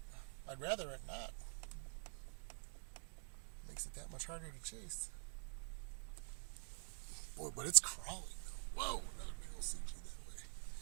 I'd rather it not. Makes it that much harder to chase. Boy, but it's crawling. Whoa, another big old CG that way.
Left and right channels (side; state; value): left; silent; digital silence